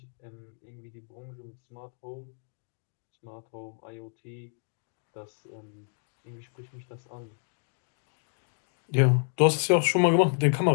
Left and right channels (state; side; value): silent; right; 58 dB below the other